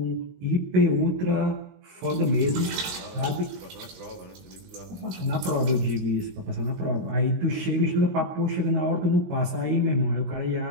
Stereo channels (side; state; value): left; late; 22 ms